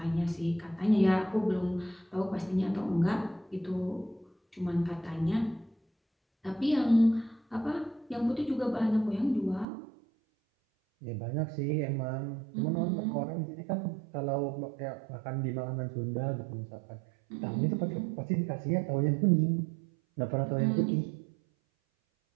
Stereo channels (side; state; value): left; drops out; at 9.7 s